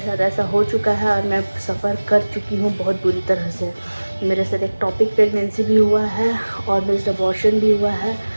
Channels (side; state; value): both; inverted; correlation -1.00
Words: ऐसा हो चुका है और मैं सफ़र कर चुकी हूँ बहुत बुरी तरह से। मेरे साथ एक टॉपिक प्रेगनेंसी भी हुआ है और मिस्ड अबॉर्शन भी हुआ है।